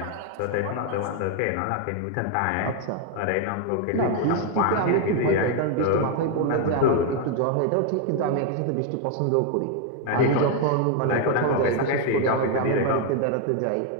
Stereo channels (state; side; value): different; both; correlation 0.00